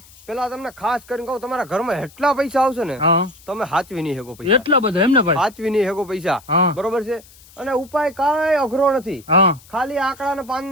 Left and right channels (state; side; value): noise; left; hiss, 24 dB below the sound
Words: પેલા તમને ખાસ કરીને કહું, તમારા ઘરમાં એટલા પૈસા આવશે ને હા તમે હાચવી નહીં શકો પૈસા, એટલા બધા એમને ભાઈ. હાચવી નહીં શકો પૈસા, હા બરોબર છે. અને ઉપાય કાંઈ અઘરો નથી, હા ખાલી આંકડા ને પાન